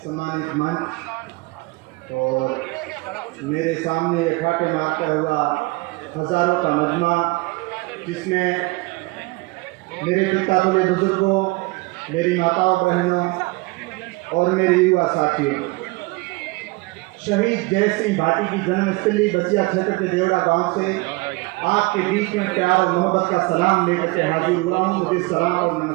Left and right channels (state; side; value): quieter; left; 24.4 dB